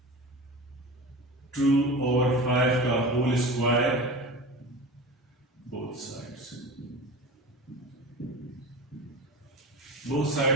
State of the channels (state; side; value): normal; both; correlation 0.32